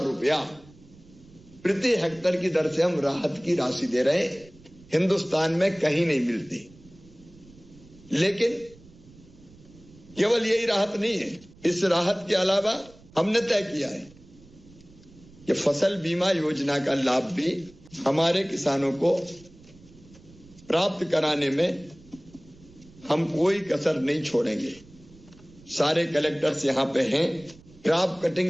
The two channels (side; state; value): right; noise; rumble, 24 dB below the sound